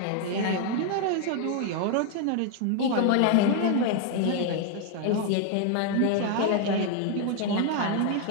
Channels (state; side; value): different; both; correlation 0.00